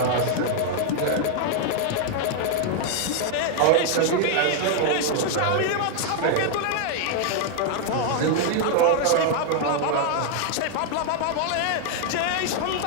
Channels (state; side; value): different; both; correlation 0.00